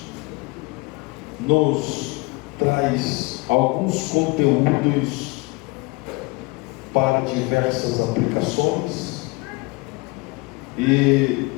nos traz alguns conteúdos para diversas aplicações, e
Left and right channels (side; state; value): right; quieter; 25.4 dB